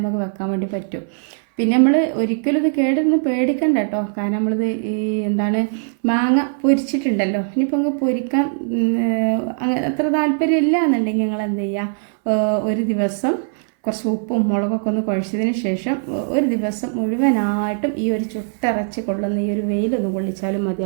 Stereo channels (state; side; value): silent; left; 62 dB below the other